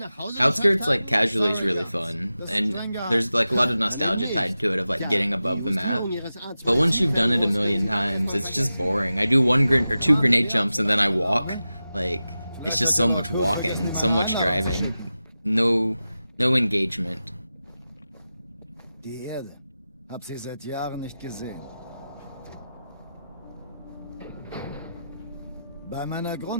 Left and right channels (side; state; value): both; inverted; correlation -0.93